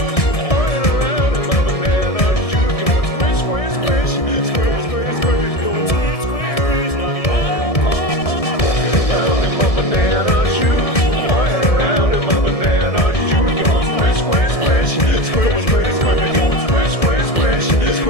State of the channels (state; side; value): late; right; 1.7 ms